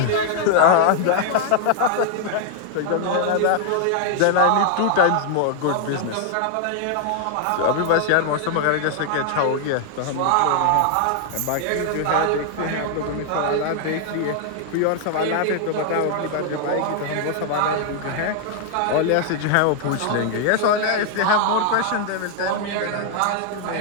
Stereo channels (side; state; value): both; different; correlation 0.00